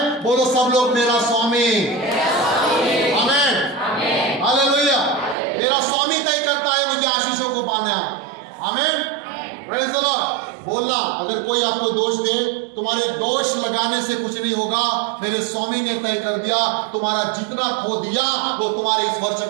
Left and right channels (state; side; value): drops out; left; at 5.4 s